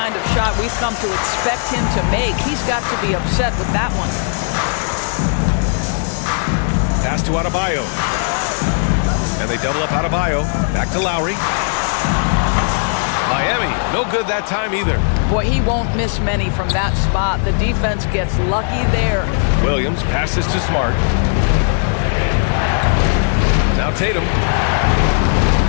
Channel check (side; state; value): right; silent; 68 dB below the other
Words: of shot we've come to expect him to make. He's got to be upset with that one. Pass to Adebayo. And they double up Adebayo. Back to Lowry. Miami, no good that time either. Boy, he won't miss many from that spot. The defense gets lucky there. Williams passes to Smart. Now Tatum.